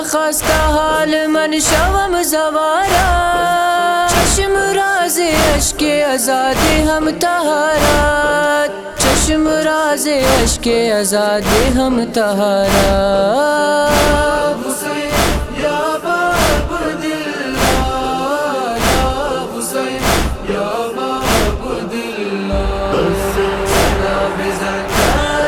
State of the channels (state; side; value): identical; both; correlation 1.00